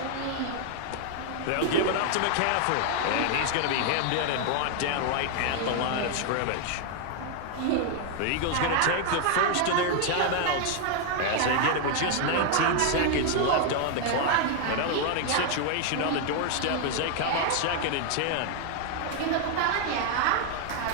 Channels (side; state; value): both; different; correlation 0.00